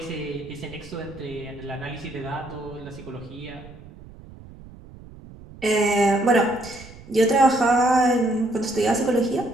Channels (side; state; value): right; noise; rumble, 19 dB below the sound